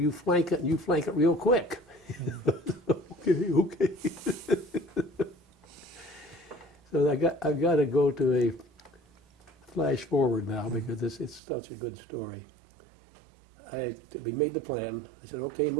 flank it, and you flank it real quick. Okay. So I've got to go to a flash forward now because it's such a good story. We made the plan. I said, okay,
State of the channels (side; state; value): left; drops out; at 11.4 s